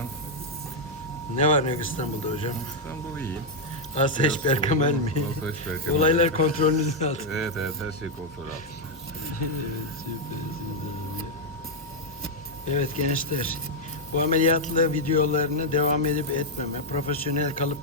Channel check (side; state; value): both; normal; correlation -0.01